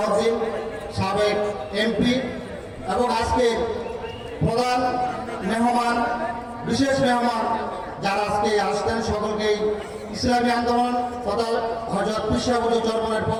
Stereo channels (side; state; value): both; identical; correlation 1.00